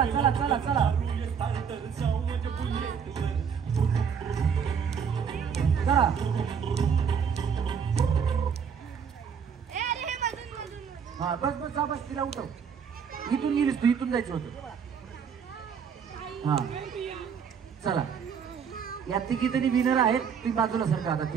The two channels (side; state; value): left; quieter; 7.0 dB